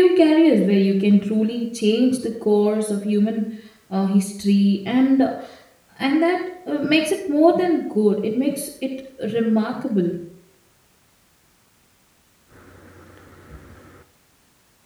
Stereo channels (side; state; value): both; identical; correlation 1.00